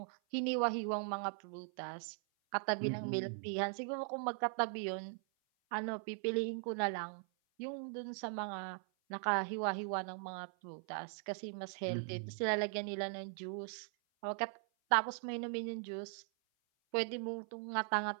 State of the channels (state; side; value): silent; left; 51 dB below the other